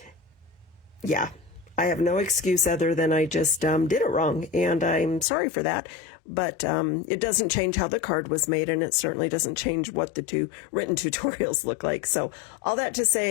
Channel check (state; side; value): drops out; right; at 5.2 s